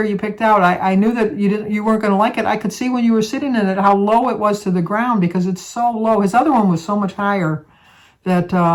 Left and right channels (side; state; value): both; identical; correlation 1.00